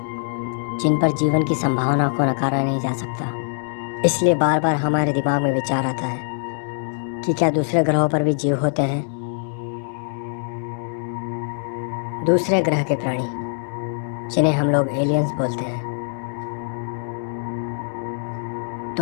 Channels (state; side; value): silent; right; 64 dB below the other